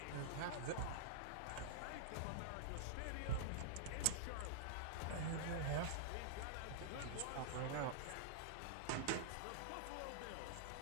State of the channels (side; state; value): both; different; correlation -0.02